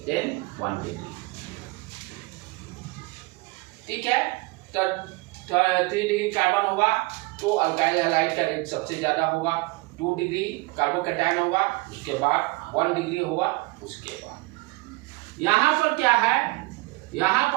then 1 degree. ठीक है, तो 3 डिग्री कार्बन होगा तो अल्काइल हैलाइड का रेट सबसे ज्यादा होगा, 2 डिग्री कार्बोकैटायन होगा, उसके बाद 1 डिग्री होगा, उसके बाद यहाँ पर क्या है, यहाँ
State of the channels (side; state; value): left; quieter; 24.0 dB